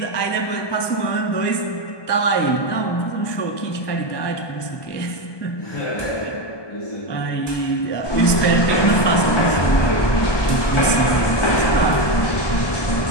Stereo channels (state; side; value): late; right; 1.2 ms